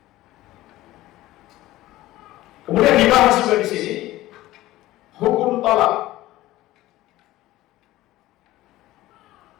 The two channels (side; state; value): right; quieter; 16.4 dB